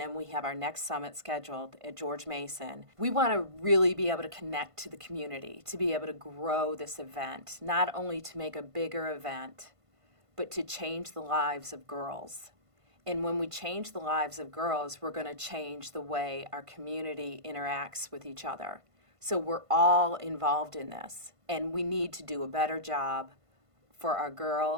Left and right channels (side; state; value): left; late; 1.5 ms